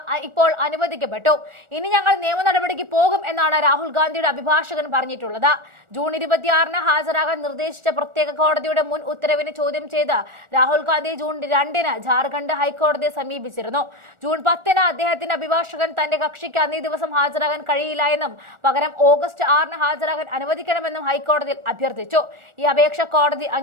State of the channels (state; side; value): late; left; 1.4 ms